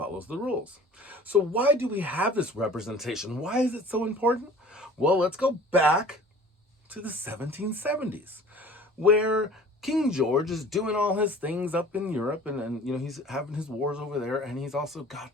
the rules. So why do we have this representation? Why is it so important? Well, let's go back to the 1770s, where King George is doing all his things up in Europe, and he's having his wars over there, and he's also got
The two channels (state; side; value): normal; both; correlation 0.47